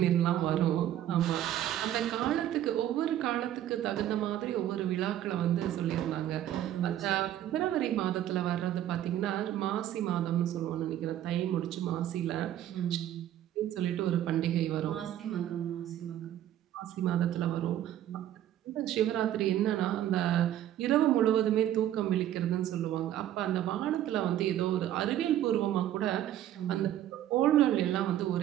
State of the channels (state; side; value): quieter; left; 12.1 dB